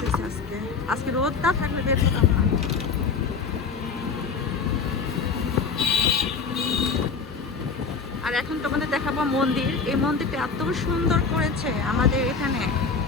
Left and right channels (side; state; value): right; quieter; 5.1 dB